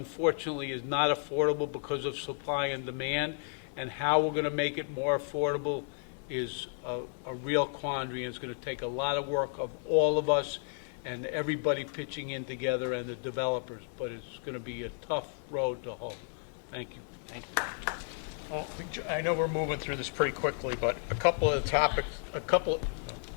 is not affordable because of supply and demand, and how we're going to make it more affordable is a real quandary, and it's going to take a lot of work of all of us and everybody pitching in together, and the developers, but it's going to be a tough road to hoe. Thank you. Thank you. Well, I know we're moving through this pretty quickly, but a couple of topics, put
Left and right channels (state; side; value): silent; right; 56 dB below the other